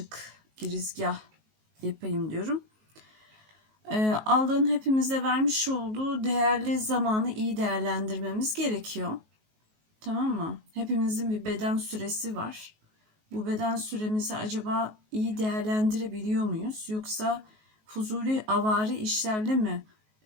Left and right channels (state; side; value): late; left; 19 ms